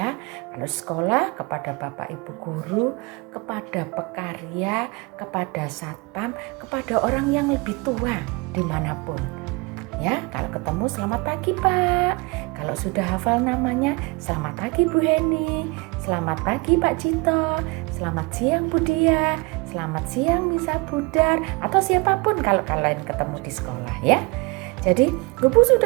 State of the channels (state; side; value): quieter; left; 28.1 dB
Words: Kalau sekolah, kepada bapak ibu guru, kepada pekarya, kepada satpam, kepada orang yang lebih tua dimanapun ya. Kalau ketemu, selamat pagi Pak. Kalau sudah hafal namanya, selamat pagi Bu Heni, selamat pagi Pak Cito, selamat siang Bu Dia, selamat siang Misa Budar, atau siapapun kalau kalian ketemu di sekolah ya. Jadi, Bu